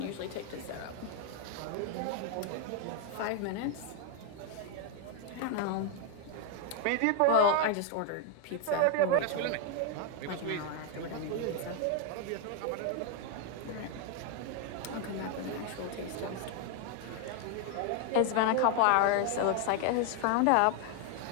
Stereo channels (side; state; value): both; different; correlation 0.00